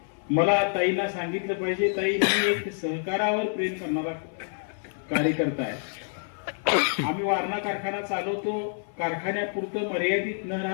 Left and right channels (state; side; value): silent; right; 56 dB below the other